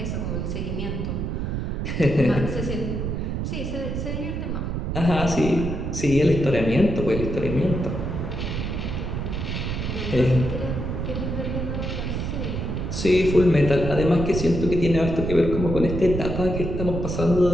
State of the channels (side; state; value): right; noise; rumble, 3 dB below the sound